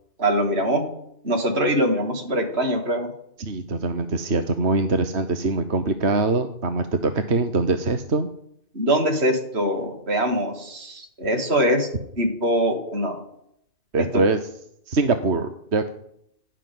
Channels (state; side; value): late; left; 2.6 ms